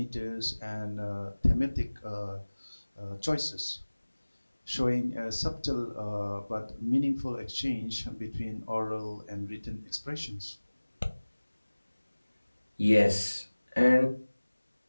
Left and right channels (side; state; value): both; inverted; correlation -1.00